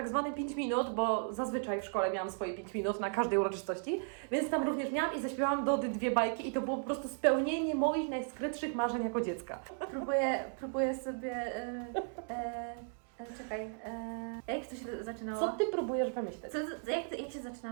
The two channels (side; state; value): left; silent; 54 dB below the other